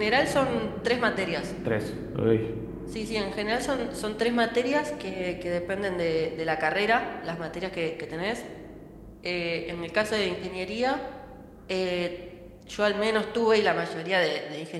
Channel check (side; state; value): both; identical; correlation 1.00